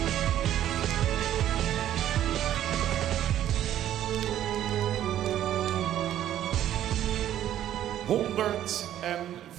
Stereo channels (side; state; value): left; quieter; 11.7 dB